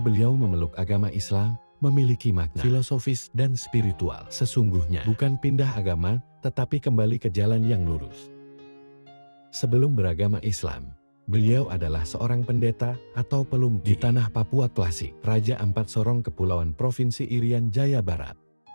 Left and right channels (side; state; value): both; inverted; correlation -1.00